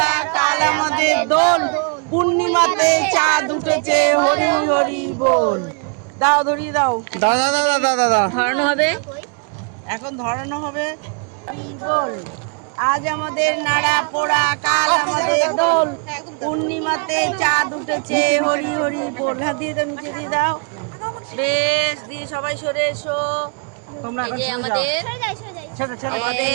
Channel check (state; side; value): quieter; left; 37.7 dB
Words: কাল আমাদের দোল, পূর্ণিমাতে চাঁদ উঠেছে, হরি হরি বল। দাও ধরিয়ে দাও। ধরানো হবে। এখন ধরানো হবে। বল, আজ আমাদের নাড়া পোড়া, কাল আমাদের দোল, পূর্ণিমাতে চাঁদ উঠেছে, হরি হরি বল। হ্যাঁ দিয়ে দাও, নিচে দিয়ে দাও। বেশ, দিয়ে সবাই সরে এসো। তোমরা এই যে আমাদের